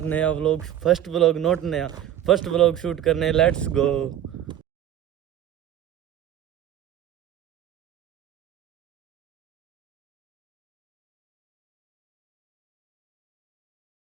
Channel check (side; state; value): left; quieter; 11.0 dB